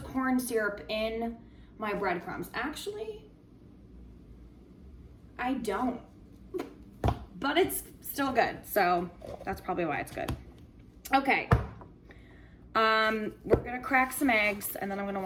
corn syrup in my breadcrumbs. Actually, I don't, but it's still good. So that's probably why it's good. Okay. We're gonna crack some eggs and then I'm gonna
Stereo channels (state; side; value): identical; both; correlation 1.00